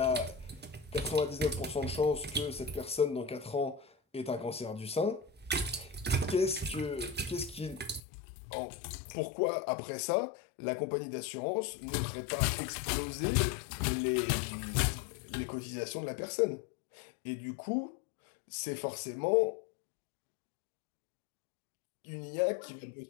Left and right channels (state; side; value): drops out; right; at 8.0 s